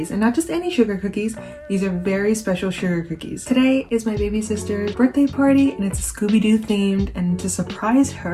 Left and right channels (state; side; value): identical; both; correlation 1.00